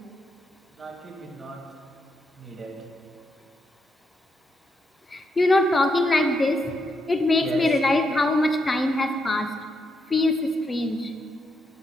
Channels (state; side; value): normal; both; correlation 0.81